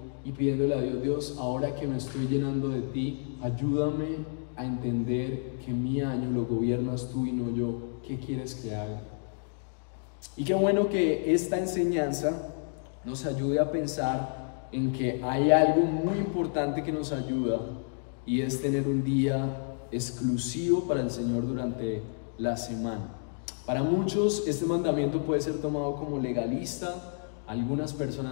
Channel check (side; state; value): right; silent; digital silence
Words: y pidiéndole a Dios: Dios, ahora que me estoy llenando de ti, ayúdame a entender que mi año lo gobiernas tú y no yo. ¿Qué quieres que haga? Y qué bueno que esta enseñanza nos ayude a pensar en que hay algo muy importante que nos ayuda, y es tener un día exclusivo para el Señor durante la semana. Para muchos este mandamiento puede ser tomado como legalista. Algunas